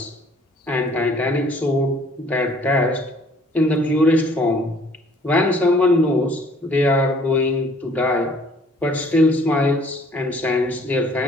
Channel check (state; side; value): normal; both; correlation 0.58